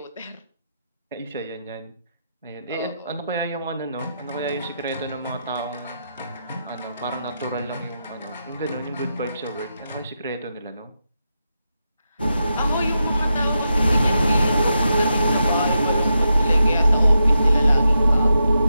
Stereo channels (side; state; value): both; inverted; correlation -0.86